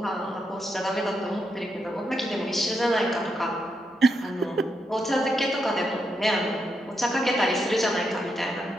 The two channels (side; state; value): both; normal; correlation 0.82